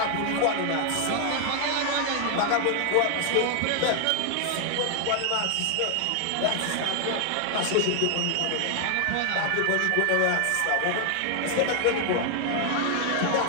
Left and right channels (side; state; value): both; different; correlation 0.00